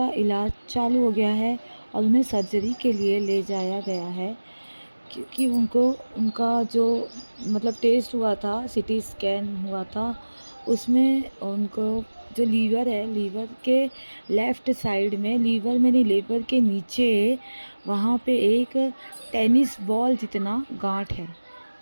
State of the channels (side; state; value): both; inverted; correlation -1.00